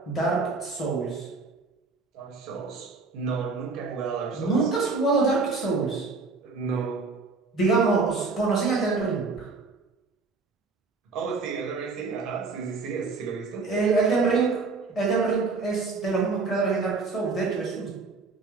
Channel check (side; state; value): left; quieter; 4.1 dB